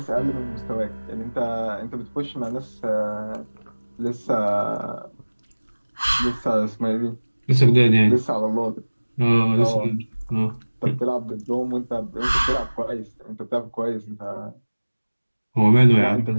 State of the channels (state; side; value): inverted; both; correlation -1.00